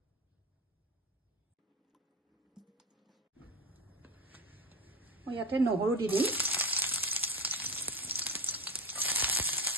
মই ইয়াতে নহৰু দি দিম।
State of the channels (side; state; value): both; normal; correlation 0.20